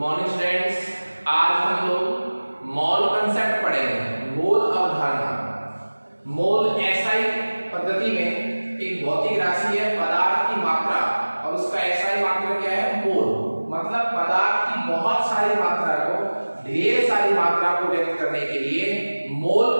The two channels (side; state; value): both; inverted; correlation -1.00